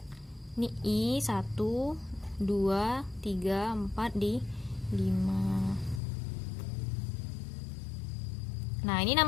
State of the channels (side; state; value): right; drops out; at 6.0 s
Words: ini I 1 2 3 4 di 5. Nah, ini